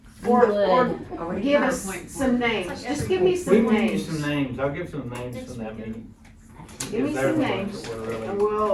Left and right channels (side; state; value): both; identical; correlation 1.00